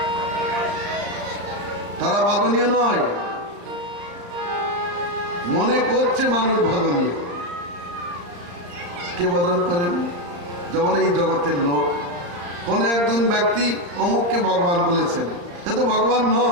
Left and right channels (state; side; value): late; left; 35 ms